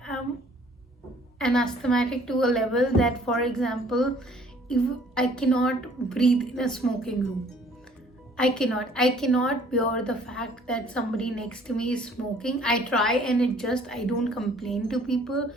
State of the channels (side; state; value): both; normal; correlation 0.57